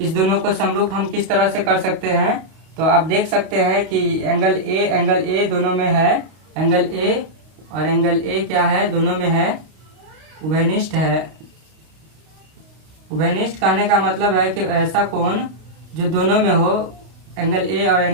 दोनों को समरूप हम किस तरह से कर सकते हैं। तो आप देख सकते हैं कि एंगल A दोनों में है, एंगल A और एंगल A क्या है, दोनों में है, उभयनिष्ठ है। उभयनिष्ठ कहने का मतलब है कि ऐसा कोण जो दोनों में हो, एंगल A और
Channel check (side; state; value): left; late; 32 ms